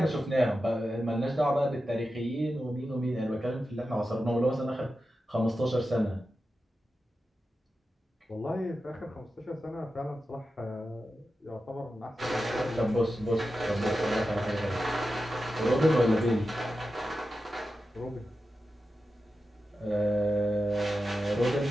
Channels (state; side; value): normal; both; correlation 0.91